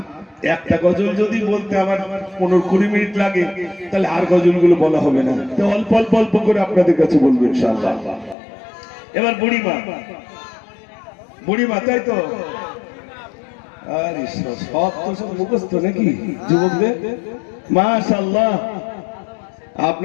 একটা গজল যদি বলতে আমার 15-20 মিনিট লাগে, তাহলে আর গজলগুলো বলা হবে না, তো অল্প অল্প অল্প করে আপনাদের কাছে বলবো ইনশাআল্লাহ। এবার বুড়িমা, বুড়িমা, তাই তো? আরে সব তো সব মুখস্থ নাকি যুবকদের? মাশাআল্লাহ।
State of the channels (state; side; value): drops out; right; at 8.3 s